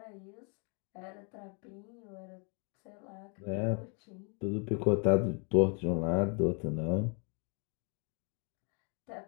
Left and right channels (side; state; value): right; quieter; 37.0 dB